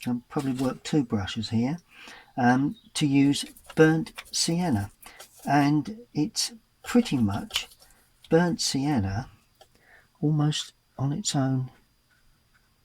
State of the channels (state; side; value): identical; both; correlation 1.00